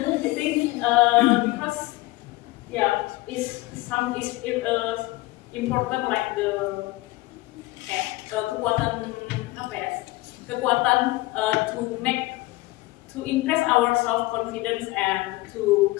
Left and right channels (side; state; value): right; quieter; 20.2 dB